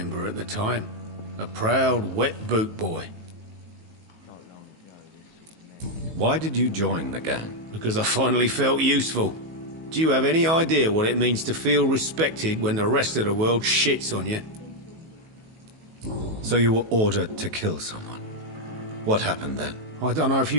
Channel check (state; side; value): late; left; 19 ms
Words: at the time. A proud, wet boot boy. Why did you join the gang? Because I finally felt useful. Do you have any idea what it means to feel respected when the rest of the world shits on you? So you were ordered to kill someone. What happened then? I don't know if